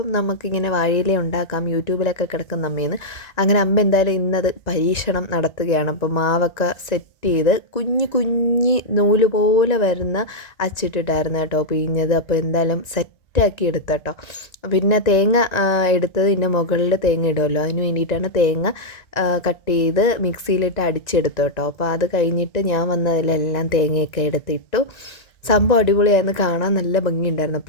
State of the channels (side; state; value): right; late; 1.9 ms